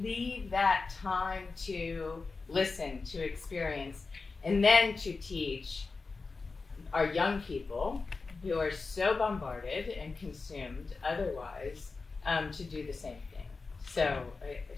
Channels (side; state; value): right; quieter; 4.2 dB